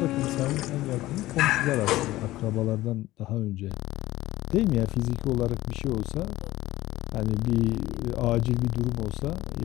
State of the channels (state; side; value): quieter; right; 16.7 dB